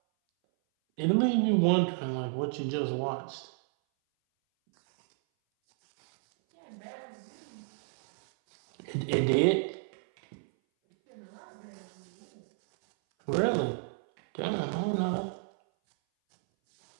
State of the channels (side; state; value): left; silent; 57 dB below the other